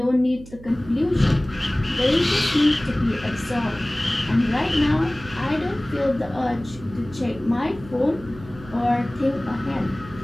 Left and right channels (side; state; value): right; noise; hum, 18 dB below the sound